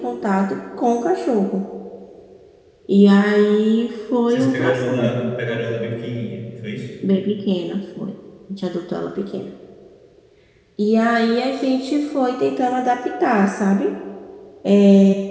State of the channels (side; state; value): both; identical; correlation 1.00